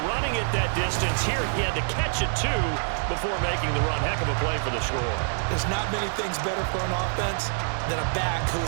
running it that distance. Here he had to catch it, too, before making the run. Heck of a play for the score. There's not many things better for an offense than a back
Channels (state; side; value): silent; left; digital silence